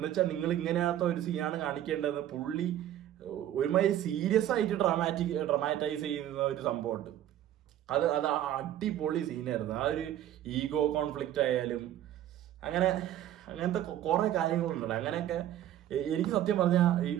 വെച്ചാൽ നിങ്ങൾ ഇങ്ങനത്തെ ഒരു സീനാണ് കാണിക്കേണ്ടതെന്ന് പുള്ളി ഒരുമാതിരി സീരിയസ് ആയിട്ട് ഡ്രമാറ്റൈസ് ചെയ്യുന്ന ഒരു സംഭവമുണ്ട്. അത് അടിപൊളി സീനായിരുന്നു. ആ ഒരു ഈഗോ കോൺഫ്ലിക്റ്റ് ആയാലും അങ്ങനത്തെ കുറെ കാര്യങ്ങളുണ്ടല്ലോ. അങ്ങനെയൊക്കെ എനിക്ക് സത്യം പറഞ്ഞാൽ ഈ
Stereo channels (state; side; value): quieter; left; 11.9 dB